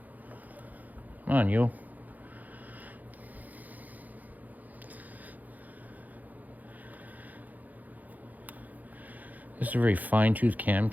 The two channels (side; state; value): left; late; 0.081 ms